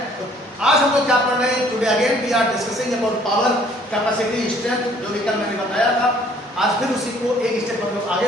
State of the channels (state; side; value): normal; both; correlation 0.59